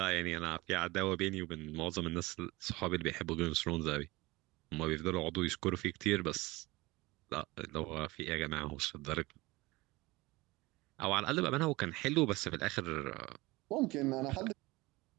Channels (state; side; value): quieter; left; 21.6 dB